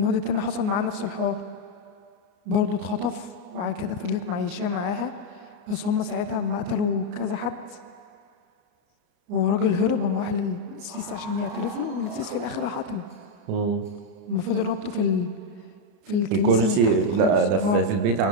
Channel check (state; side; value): late; left; 33 ms